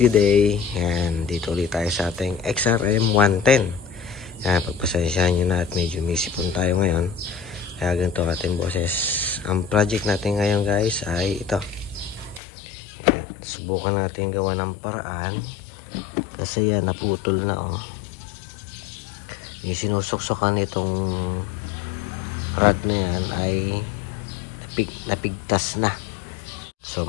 day. Yan, dito ulit tayo sa ating XRM 110. Yan, pagpasensyahan nyo na at medyo may sipon tayo ngayon. Kaya ganito ating boses. Ang project natin ngayon guys ay ito. Yan, subukan natin gawa ng paraan. Kasi yan, naputol na oh. Yung sinusuksukan itong rod na yan ay napigtas na. So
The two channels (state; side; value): drops out; right; at 12.4 s